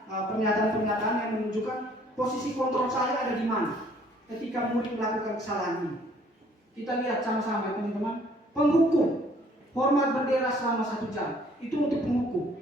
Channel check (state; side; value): normal; both; correlation 0.59